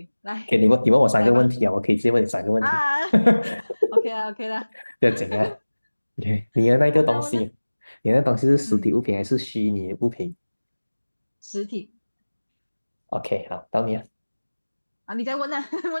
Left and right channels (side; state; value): both; inverted; correlation -1.00